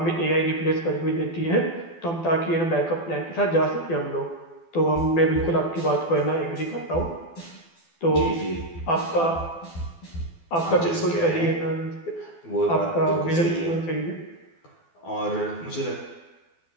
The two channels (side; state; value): right; late; 12 ms